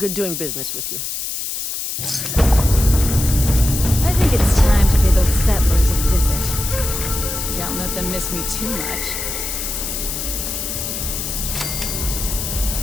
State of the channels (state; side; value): noise; left; hiss, 4 dB below the sound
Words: doing business with you. I think it's time to pay those settlers a visit. Can't let them miss me too much.